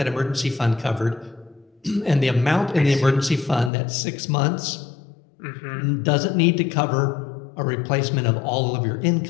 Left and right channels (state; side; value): drops out; right; at 3.7 s